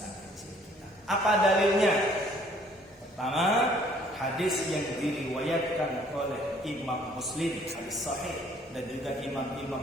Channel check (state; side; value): normal; both; correlation 0.59